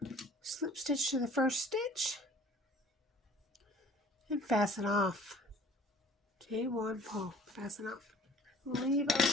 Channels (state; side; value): normal; both; correlation 0.51